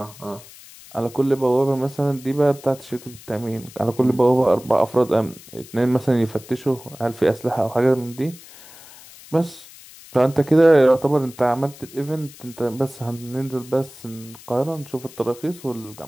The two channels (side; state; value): left; noise; hiss, 20 dB below the sound